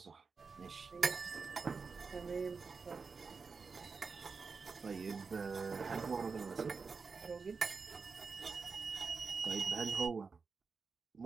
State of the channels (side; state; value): left; quieter; 5.0 dB